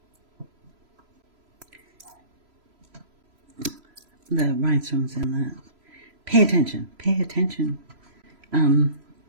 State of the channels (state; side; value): late; left; 3.0 ms